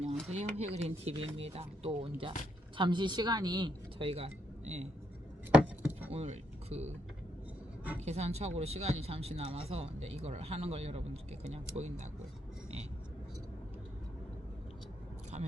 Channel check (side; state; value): both; normal; correlation 0.76